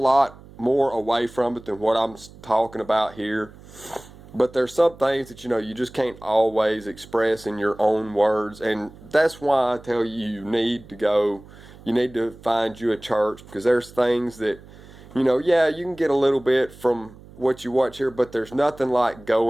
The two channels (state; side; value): noise; right; hum, 21 dB below the sound